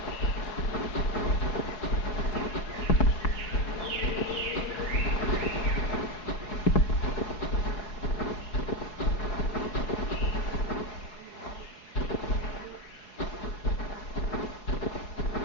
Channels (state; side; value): late; right; 4.7 ms